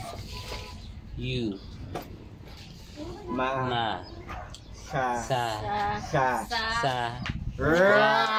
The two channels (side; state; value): both; identical; correlation 1.00